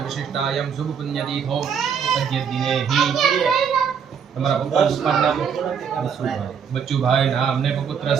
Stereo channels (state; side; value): quieter; left; 7.2 dB